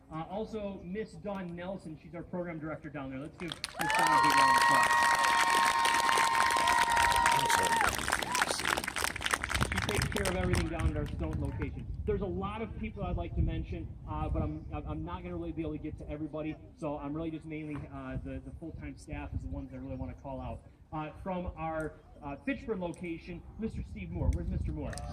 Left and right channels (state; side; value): identical; both; correlation 1.00